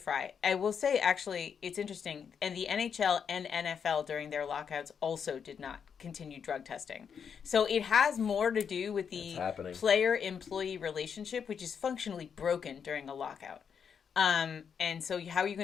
I will say, actually, it's interesting. And the NHL and NFL during their lockouts also did not continue drug testing. So it has more to do with the player-employee relationship, which is functionally broken during a lockout. And so how are you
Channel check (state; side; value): quieter; right; 7.0 dB